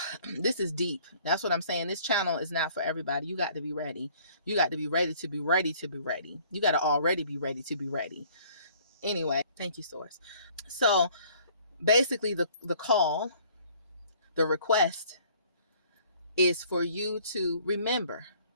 This is deep. That's what I'm saying. This channel is not for everybody. You got to be ready. You got to be ready to be ready to be ready. You got to already be ready to be ready. Anyway, thank you, Source. So basically the call, the request is for you to remember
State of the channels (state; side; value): inverted; both; correlation -0.57